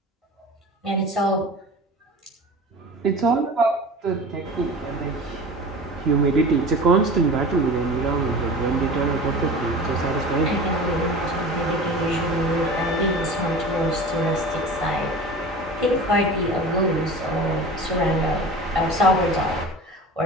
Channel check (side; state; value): both; normal; correlation 0.36